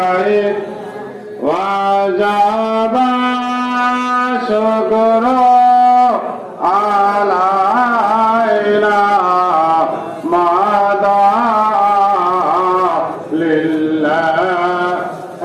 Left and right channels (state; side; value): identical; both; correlation 1.00